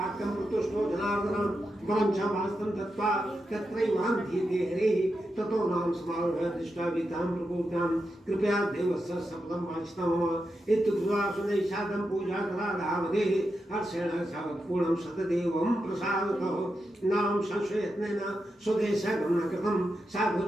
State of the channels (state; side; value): normal; both; correlation 0.87